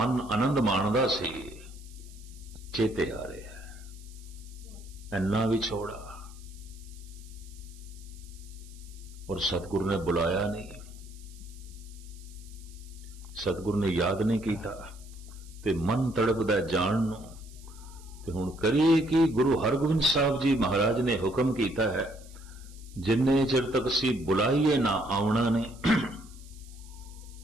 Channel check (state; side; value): noise; right; hiss, 23 dB below the sound